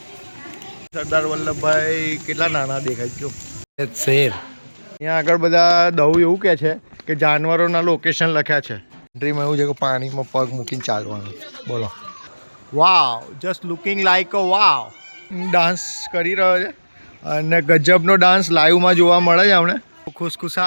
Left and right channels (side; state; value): both; inverted; correlation -1.00